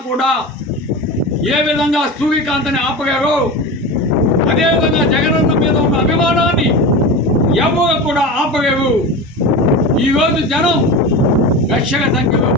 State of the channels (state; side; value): normal; both; correlation 0.27